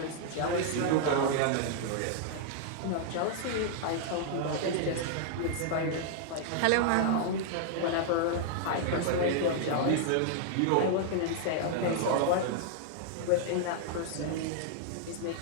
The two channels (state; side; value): different; both; correlation -0.01